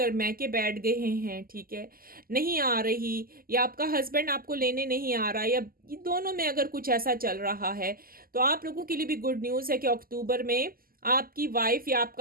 मैके बैठ गए हैं, ठीक है, नहीं आ रही, या आपका हस्बैंड आपको लेने नहीं आ रहा, या ये दोनों में अगर कुछ ऐसा चल रहा है, तो आप लोगों के लिए भी गुड न्यूज़ है कि अक्टूबर में आपकी वाइफ या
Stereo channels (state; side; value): late; left; 0.42 ms